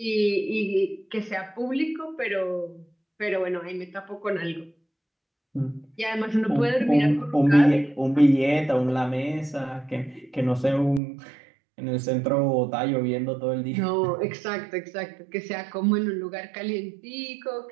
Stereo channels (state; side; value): drops out; left; at 11.0 s